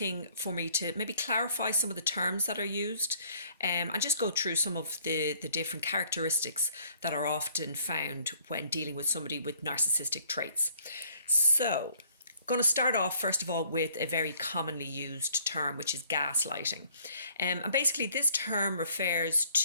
for me to maybe clarify some of the terms that are used and just go through some of the different characteristics that are often found when dealing with somebody with narcissistic traits. So, going to start off first of all with a very commonly used term, which is gaslighting. And basically this term refers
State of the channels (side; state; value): both; inverted; correlation -0.61